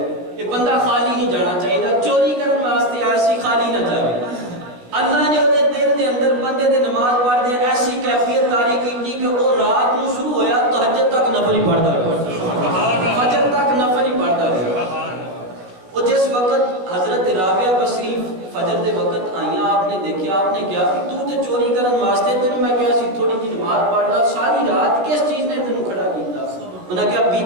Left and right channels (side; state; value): left; late; 16 ms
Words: یہ بندہ خالی نہیں جانا چاہیے چوری کرنے واسطے آیا سی خالی نہ جاوے اللہ نے وہ دل دے اندر بندے دے نماز پڑھ دے ایسی کیفیت طاری کی کہ وہ رات نو شروع ہویا تہجد تک نفل ہی پڑھتا رہا فجر تک نفل ہی پڑھتا رہا وہ جس وقت حضرت رابعہ بصری فجر دے وقت آئیاں آپ نے دیکھا آپ نے کیا کہ تو تے چوری کرن واسطے تینوں میں کیا سی تھوڑی کی نماز پڑھ لا ساری رات کس چیز نے تینوں کھڑا کیتا انہوں نے کہا بی